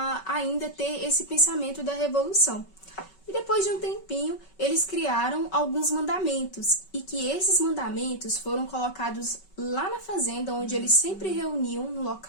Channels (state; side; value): late; right; 5.3 ms